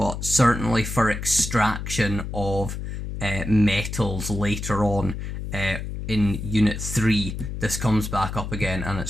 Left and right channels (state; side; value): noise; left; hum, 6 dB below the sound